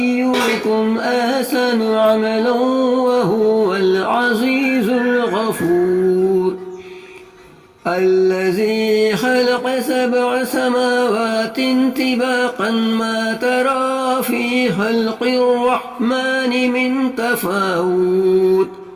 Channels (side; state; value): both; identical; correlation 1.00